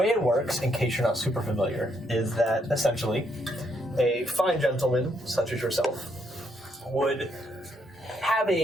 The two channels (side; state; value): both; normal; correlation 0.75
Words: it works, in case you're not super familiar, is that essentially a fine gentleman such as yourself would have